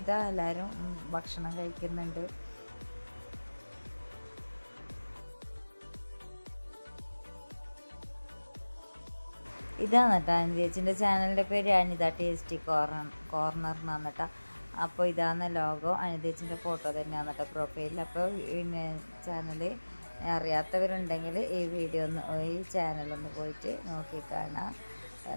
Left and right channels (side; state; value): both; inverted; correlation -1.00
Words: ഇതാ എല്ലാവരും ഭക്ഷണം കഴിക്കുന്നുണ്ട്. ഇതാണ് കേട്ടോ അനുജേച്ചിൻ്റെ ചാനലിൻ്റെ പേര് അനിത ടേസ്റ്റി കോർണർ എന്നാണ് കേട്ടോ. അപ്പോൾ ഇതാണ് ലോഗോ. അനുജേച്ചിൻ്റെ ഫോട്ടോ തന്നെയാണ് കേട്ടോ പ്രൊഫൈലിൽ. അപ്പോൾ പിന്നെ ചാനൽ അറിയാത്തവരുണ്ടെങ്കിൽ ഈ ചാനലൊന്ന് പോയിട്ട് നോക്കി കാണാം,